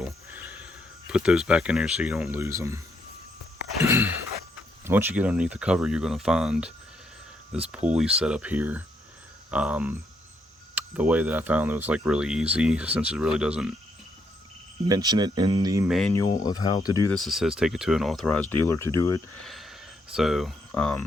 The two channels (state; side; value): normal; both; correlation 0.76